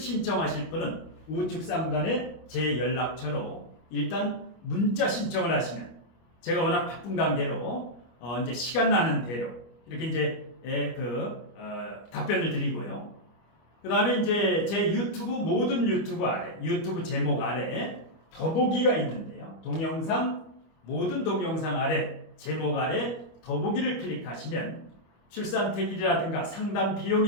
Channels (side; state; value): right; late; 25 ms